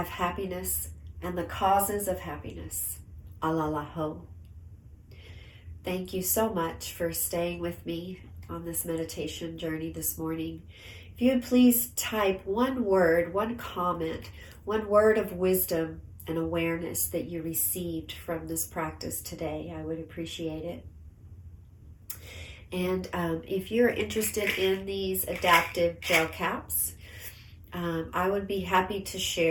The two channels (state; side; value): identical; both; correlation 1.00